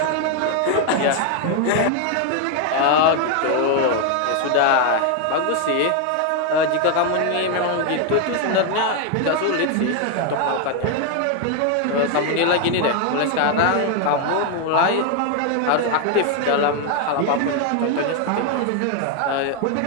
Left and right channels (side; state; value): both; different; correlation 0.01